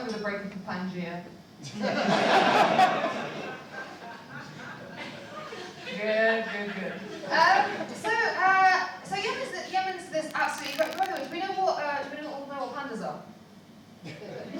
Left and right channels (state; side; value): identical; both; correlation 1.00